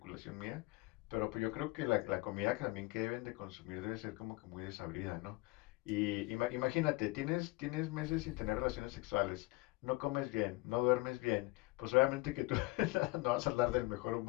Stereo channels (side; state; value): right; quieter; 22.2 dB